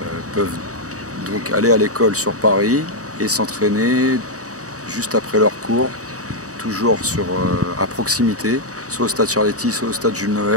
peuvent donc aller à l'école sur Paris et s'entraîner juste après leur cours, toujours à proximité, soit au stade Charletti, soit au stade Jules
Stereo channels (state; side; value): late; left; 0.66 ms